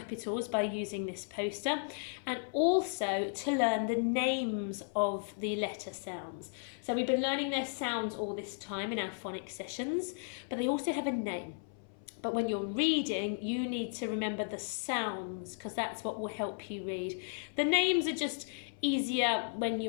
by using this poster, and also to learn the names of the letter sounds. So we've been learning their sounds all this time in our phonics sessions, but they also have a name. But when you're reading, you need to remember the sounds, because that's what will help you read. The names are just easier when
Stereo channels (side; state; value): right; silent; 55 dB below the other